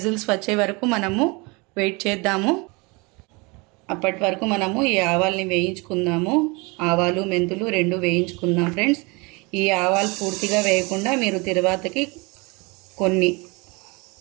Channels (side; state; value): left; quieter; 27.7 dB